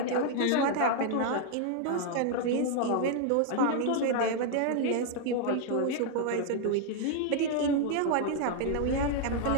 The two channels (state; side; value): different; both; correlation 0.00